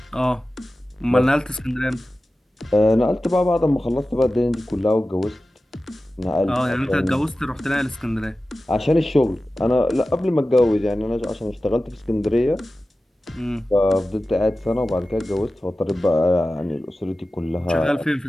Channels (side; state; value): both; normal; correlation 0.95